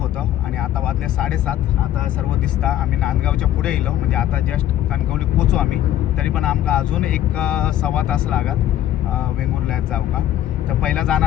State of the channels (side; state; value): right; quieter; 12.3 dB